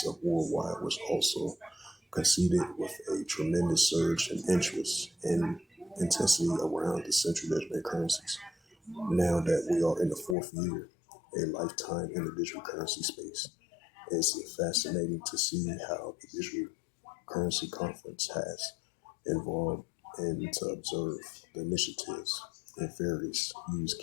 of worldwide, was also coincided with a tremendous surge in interest and intensity around the central digital currencies. Now that we are in the 4th year, a lifetime in the digital currency space, it's fascinating to see how the digital currency conference has involved and to observe the initiatives and various use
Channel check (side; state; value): right; drops out; at 10.4 s